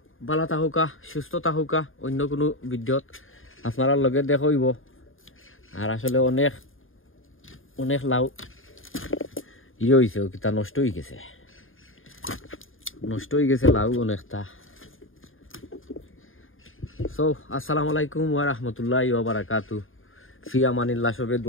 ভালো থাকুকা সুস্থ থাকুকা অন্য কোনো ভিডিওত আপনার লগে দেখা হইব। আর আসলে অনেক লাউ হয়েছে কিতা নষ্ট হয়ে গেছে লাউ অনেকটা। সো আসসালামু আলাইকুম ওয়া রাহমাতুল্লাহি ওয়া বারাকাতুহু। ফি আমানিল্লাহ, সবে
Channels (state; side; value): late; right; 0.59 ms